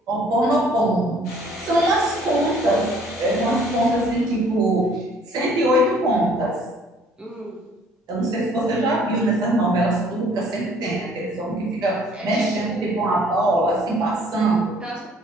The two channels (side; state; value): both; normal; correlation 0.58